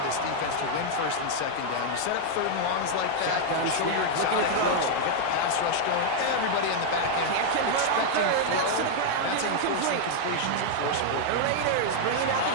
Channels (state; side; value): different; both; correlation -0.01